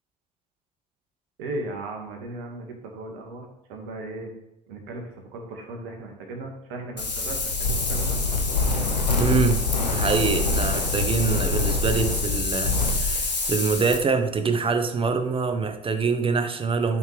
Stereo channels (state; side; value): normal; both; correlation 0.26